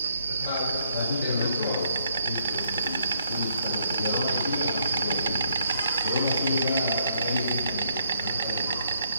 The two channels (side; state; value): both; inverted; correlation -0.70